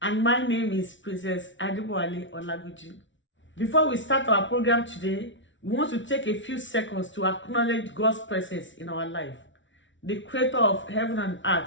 And my name is Princess Adibowale Olaguji. Before we start our program today, we want to take a few seconds to acknowledge God's presence in our life. The creator of heaven and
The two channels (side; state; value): right; late; 0.55 ms